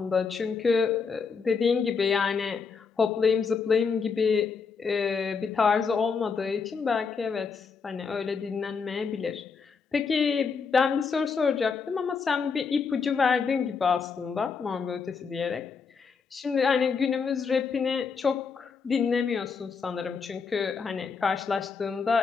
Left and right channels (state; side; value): quieter; right; 5.5 dB